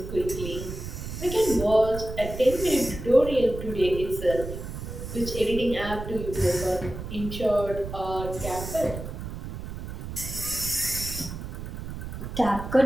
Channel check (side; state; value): right; noise; rumble, 8 dB below the sound